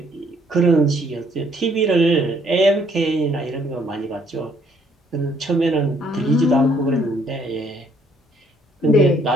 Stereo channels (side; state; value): both; normal; correlation 0.65